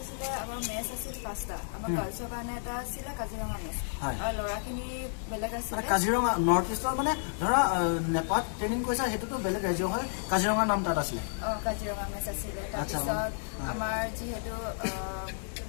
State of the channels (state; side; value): silent; right; digital silence